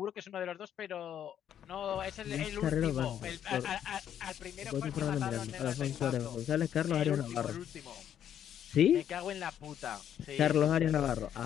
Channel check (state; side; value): quieter; right; 9.8 dB